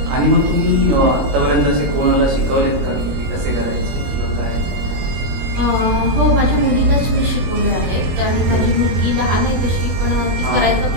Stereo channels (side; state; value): left; late; 22 ms